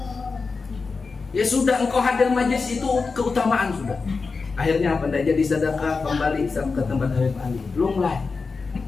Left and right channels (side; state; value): right; quieter; 4.5 dB